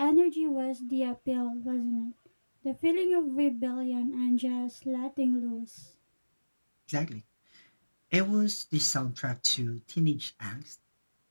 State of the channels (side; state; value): both; inverted; correlation -1.00